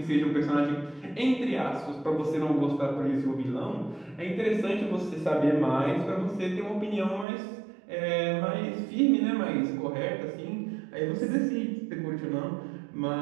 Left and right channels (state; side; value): drops out; left; at 7.2 s